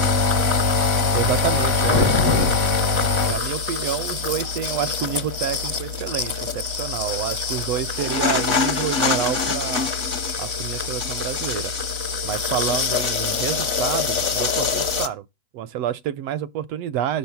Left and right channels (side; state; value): left; late; 8.1 ms